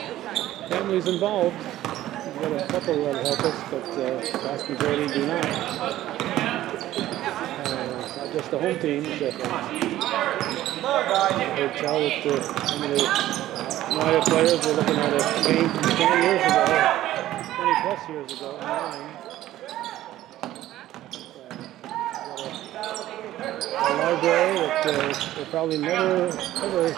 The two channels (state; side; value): quieter; left; 14.2 dB